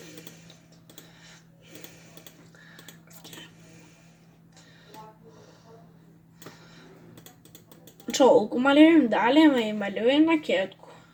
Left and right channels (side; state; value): both; identical; correlation 1.00